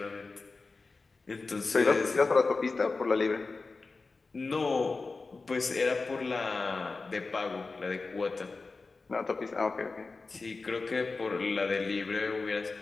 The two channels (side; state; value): right; quieter; 3.9 dB